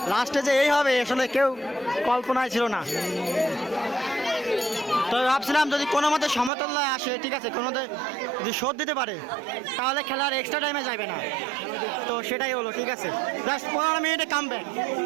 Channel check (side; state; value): left; drops out; at 6.5 s